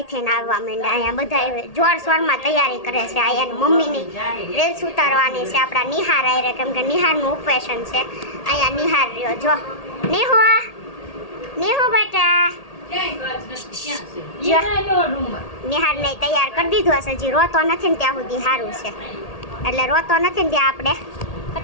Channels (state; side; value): late; right; 1.8 ms